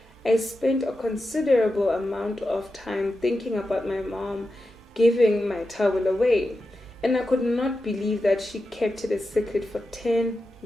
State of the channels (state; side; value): normal; both; correlation 0.90